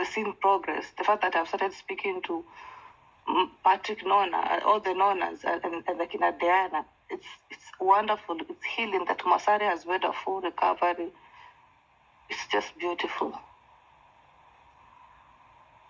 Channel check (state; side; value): identical; both; correlation 1.00